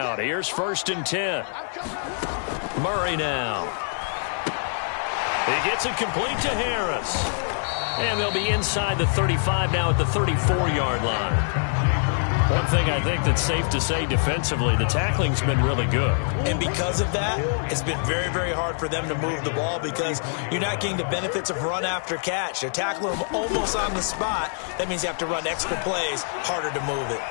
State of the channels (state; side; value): silent; right; digital silence